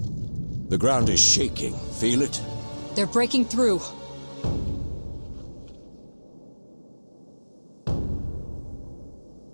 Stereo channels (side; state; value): both; inverted; correlation -1.00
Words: The ground is shaking. Feel it? They're breaking through.